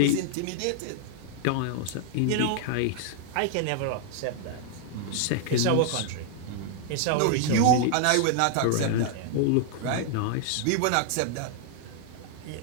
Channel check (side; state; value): both; different; correlation 0.00